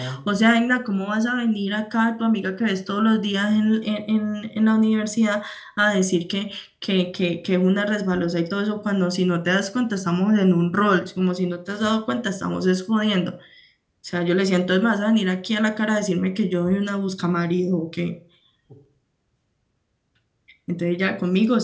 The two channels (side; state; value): both; identical; correlation 1.00